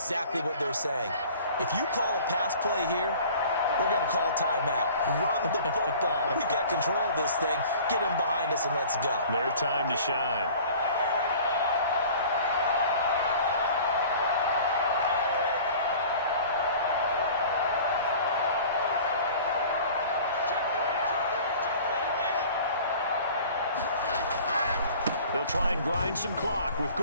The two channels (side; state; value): both; inverted; correlation -0.46